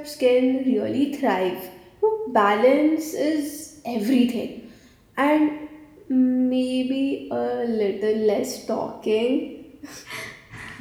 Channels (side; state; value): both; identical; correlation 1.00